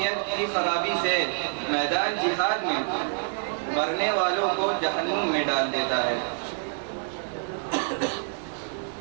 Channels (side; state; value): left; silent; 60 dB below the other